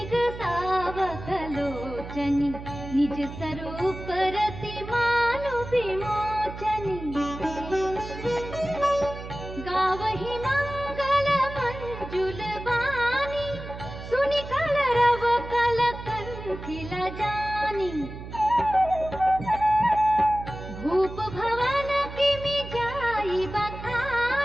सावकलोचनी निज स्वरूप रति मानु विमोचनी गावहि मंगल मंजुल वाणी सुनि कलरव कल कंठिल जानी भूप भवन किमि जाई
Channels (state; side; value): noise; right; hum, 11 dB below the sound